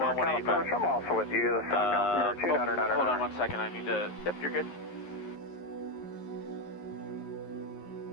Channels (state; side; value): late; right; 11 ms